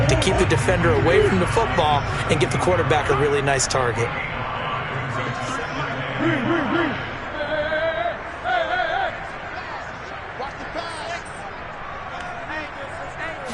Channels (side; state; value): both; identical; correlation 1.00